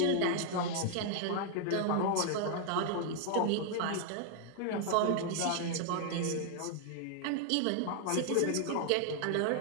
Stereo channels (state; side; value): different; both; correlation 0.00